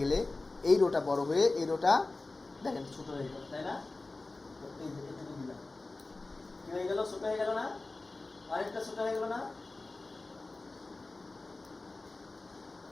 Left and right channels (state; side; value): quieter; right; 3.3 dB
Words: গেলে এই রোটা বড় হয়ে এই রোটা দেখেন ছোট হয়ে গেল, তাই না? এই যে এটুকু দিলাম, কি হয়ে গেল? ছোট হয়ে গেল না? আরেকটা ছোট হয়ে গেল না?